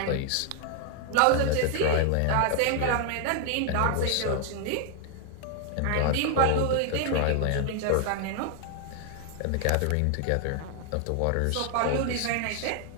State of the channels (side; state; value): both; different; correlation 0.00